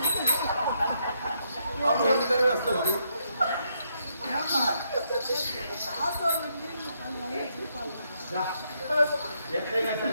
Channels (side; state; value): both; inverted; correlation -0.76